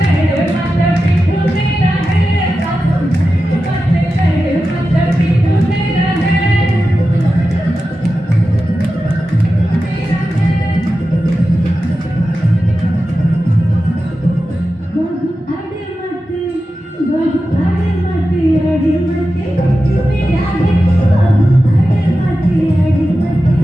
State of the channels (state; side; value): normal; both; correlation 0.92